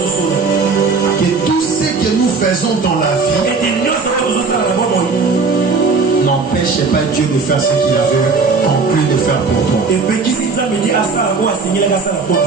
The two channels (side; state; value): left; quieter; 4.3 dB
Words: que tout ce que nous faisons dans la vie n'empêche pas Dieu de faire ce qu'il avait conclu de faire pour toi.